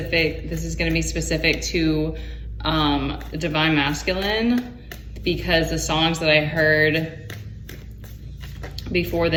This is gonna be specific to Divine Masculine, because the songs that I heard before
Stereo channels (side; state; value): both; identical; correlation 1.00